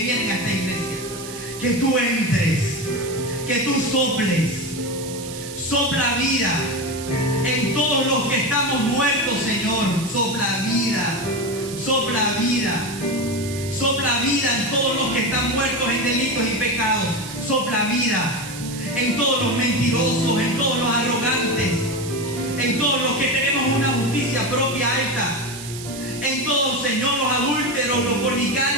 a esta iglesia, que tú entres, que tú sopla vida en todos los que estamos muertos, Señor. Sopla vida en todos los que están muertos en delitos y pecados. Sopla vida en todos los mentirosos, en todos los arrogantes, en todos los que tenemos una justicia propia alta, en todos, Señor, los adúlteros, los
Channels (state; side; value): noise; right; hiss, 12 dB below the sound